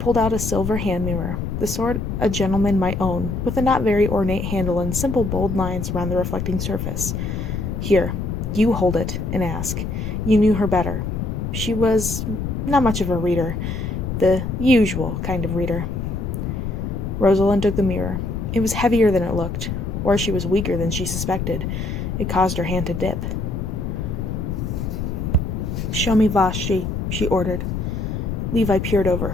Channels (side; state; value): left; noise; rumble, 3 dB below the sound